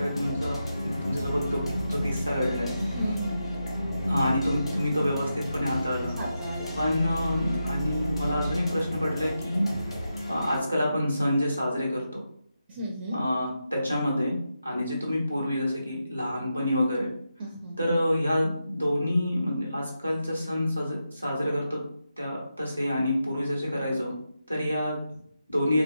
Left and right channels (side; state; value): both; inverted; correlation -0.87